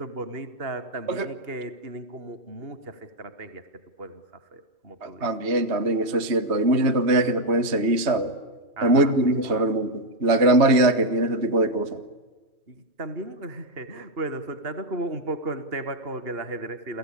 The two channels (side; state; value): left; late; 3.1 ms